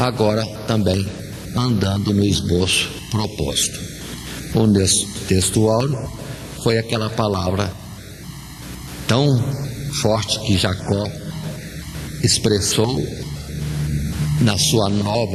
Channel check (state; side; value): identical; both; correlation 1.00